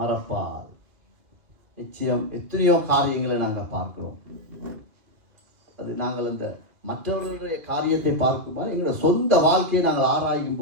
நிச்சயம் எத்தனையோ காரியங்களை நாங்கள் பார்க்கிறோம். அது நாங்கள் இந்த மற்றவர்களுடைய காரியத்தை பார்க்கும்போது எங்களோட சொந்த வாழ்க்கையை நாங்கள் ஆராயும்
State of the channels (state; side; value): late; left; 2.1 ms